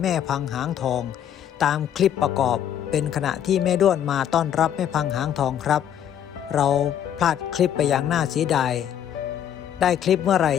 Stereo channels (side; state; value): right; quieter; 9.9 dB